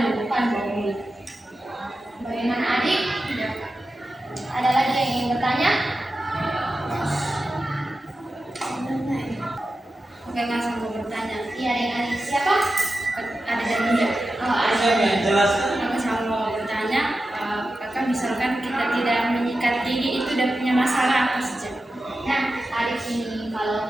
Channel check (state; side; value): normal; both; correlation 0.92